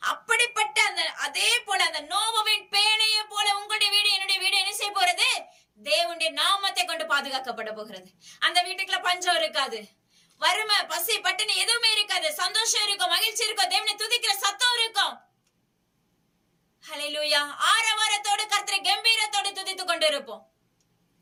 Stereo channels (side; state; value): both; identical; correlation 1.00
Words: அப்படிப்பட்ட அந்த அதே போல அந்த நோவாவின் பேழையை போல உங்களுடைய வீடு என்னுடைய வீடு என்ன செய்ய போறது? தேவனுடைய நாமத்தை கொண்டு பாதுகாக்கப்பட போகிறது. அந்த வீட்டுக்குள்ள பஞ்சம் இருக்காது, வறுமை பசி பட்டினி எதுவுமே இருக்காது, சந்தோஷம் இருக்கும், மகிழ்ச்சி இருக்கும், தேவனை துதிக்கிற சத்தம் இருக்கும். ஹல்லேலூயா. ஆரவாரத்தோடு கர்த்தரை கம்பீரத்தோடு துதித்துக் கொண்டு இருப்போம்.